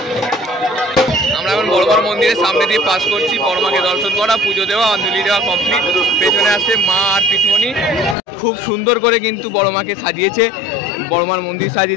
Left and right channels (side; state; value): right; drops out; at 8.2 s